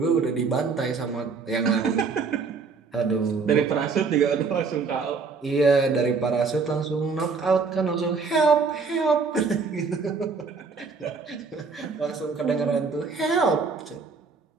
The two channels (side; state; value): left; quieter; 4.8 dB